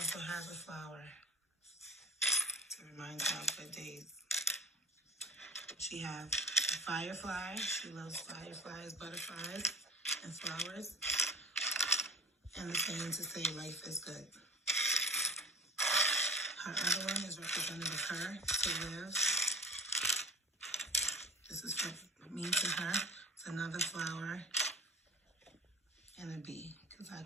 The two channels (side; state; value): both; normal; correlation 0.39